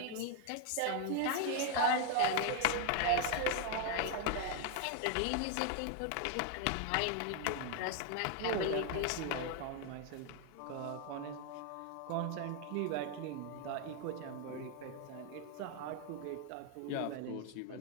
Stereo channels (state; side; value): different; both; correlation 0.01